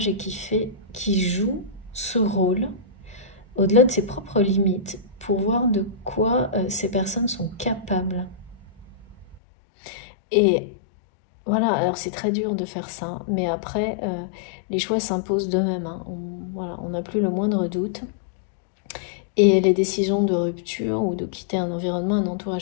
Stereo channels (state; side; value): drops out; right; at 9.4 s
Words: et qui joue ce rôle, au-delà de ses propres limites, pour voir de quoi ces personnes sont capables. Et voilà, alors c'est très dur de faire ça, mais après, les choix s'imposent d'eux-mêmes. Hein. On n'a plus le moindre doute. Et les décisions de rupture ou de quitter un environnement, un